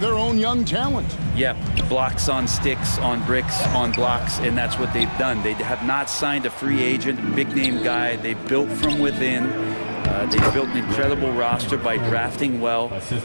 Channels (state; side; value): inverted; both; correlation -1.00